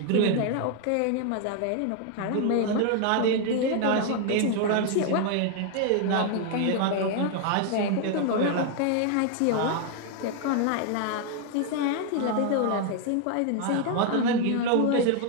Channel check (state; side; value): different; both; correlation 0.00